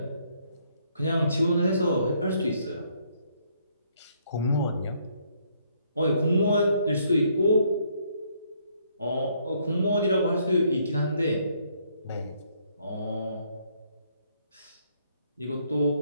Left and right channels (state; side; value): inverted; both; correlation -0.69